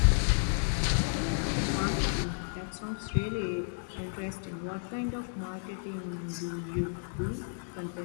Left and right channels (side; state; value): right; silent; digital silence